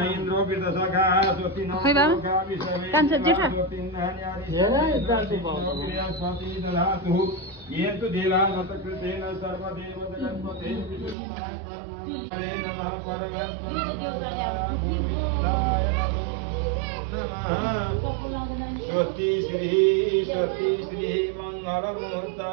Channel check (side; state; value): left; drops out; at 11.2 s